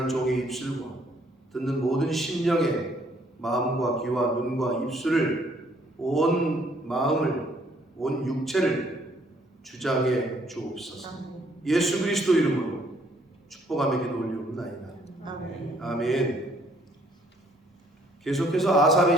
종의 입술과 듣는 모든 심령의 마음과 귀와 눈과 입술을 온 마음을 온 육체를 주장해 주옵소서. 예수 그리스도 이름으로 축복하며 기도 올리옵나이다. 아멘. 아멘. 계속해서 아삽의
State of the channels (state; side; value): normal; both; correlation 0.65